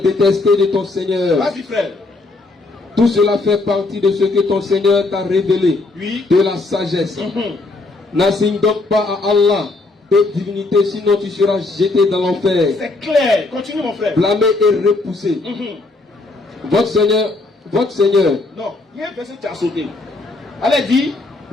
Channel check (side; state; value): right; quieter; 3.2 dB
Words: de ton Seigneur. Vas-y, frère. Tout cela fait partie de ce que ton Seigneur t'a révélé. Oui. De la sagesse. N'assigne donc pas à Allah de divinité, sinon tu seras jeté dans l'enfer. C'est clair. Continue, mon frère. Blâmé et repoussé. Votre Seigneur. Non, il y a un verset que tu as sauté. Allez, dis.